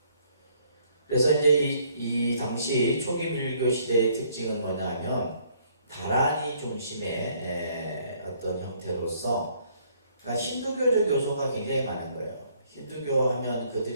그래서 이제 이 당시 초기 밀교 시대의 특징은 뭐냐면 다란이 중심의 어떤 형태로서 그러니까 힌두교적 요소가 굉장히 많은 거예요. 힌두교 하면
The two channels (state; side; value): inverted; both; correlation -0.64